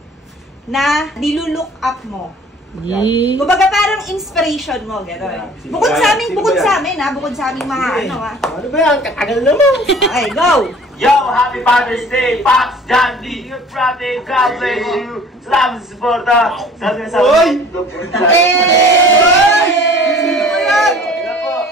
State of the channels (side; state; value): both; normal; correlation 0.49